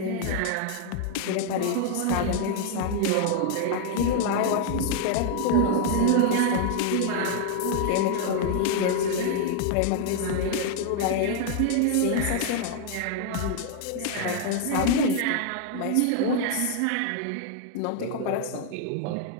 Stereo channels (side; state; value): both; different; correlation 0.00